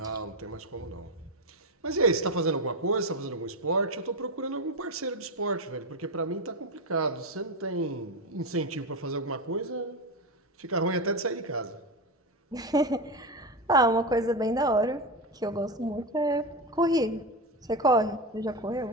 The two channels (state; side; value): normal; both; correlation 0.16